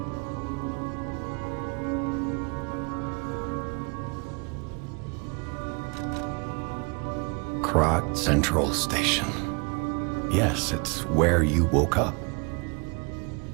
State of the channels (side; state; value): left; quieter; 32.1 dB